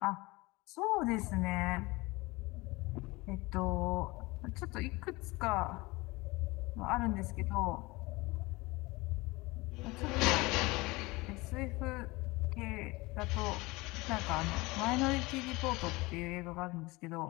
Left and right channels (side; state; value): right; quieter; 22.8 dB